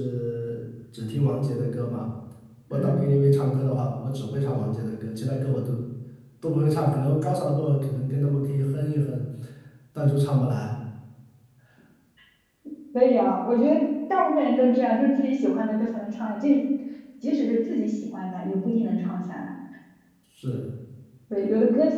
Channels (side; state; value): both; identical; correlation 1.00